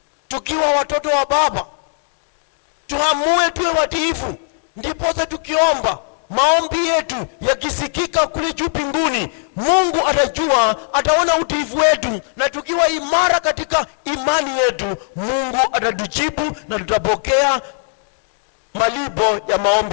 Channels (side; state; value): right; silent; digital silence